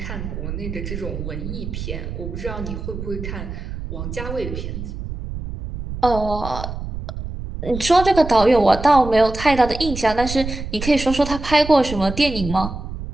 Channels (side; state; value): right; noise; rumble, 7 dB below the sound